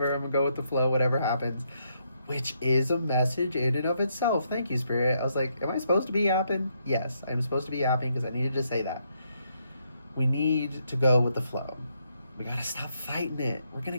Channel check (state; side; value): inverted; both; correlation -0.76